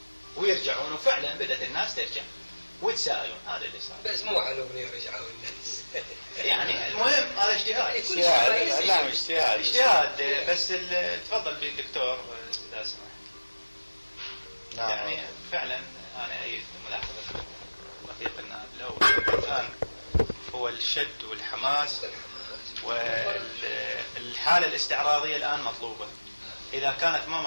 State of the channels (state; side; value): inverted; both; correlation -1.00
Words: ويرجعون، وفعلا بدأت الناس ترجع ويتساءلون. هذا اللي صار. بس مو على أغنية رجعوا الناس. يعني المهم هذا اجتهاد. اجتهاد بس تفضل بالدكتور إذا سمحت. نعم. يعني فعلا أنا أيد ملاحظة رفيق النائب الأول الآن هو الشد والحماس والحالة الاستعراضية الآن مطلوبة. إذا كانت ما